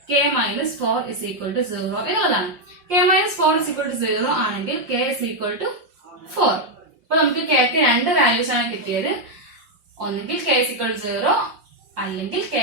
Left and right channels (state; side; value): late; left; 5.7 ms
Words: k minus 4 is equal to 0 എന്നുള്ളതാണ്. k minus 4 is equal to 0 ആണെങ്കിൽ k ഇസ് ഈക്വൽ ടു 4. അപ്പൊ നമുക്ക് k ക്ക് രണ്ട് വാല്യൂസ് ആണ് കിട്ടിയത്. ഒന്നെങ്കിൽ k ഇസ് ഈക്വൽ ടു 0 അല്ലെങ്കിൽ k